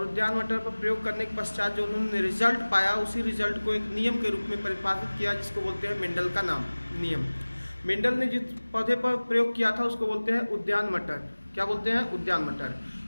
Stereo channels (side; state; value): both; inverted; correlation -1.00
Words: उद्यान मटर पर प्रयोग करने के पश्चात जो उन्होंने रिजल्ट पाया, उसी रिजल्ट को एक नियम के रूप में परिभाषित किया, जिसको बोलते हैं मेंडल का नाम नियम। मेंडल ने जिस पौधे पर प्रयोग किया था उसको बोलते हैं उद्यान मटर। क्या बोलते हैं? उद्यान मटर।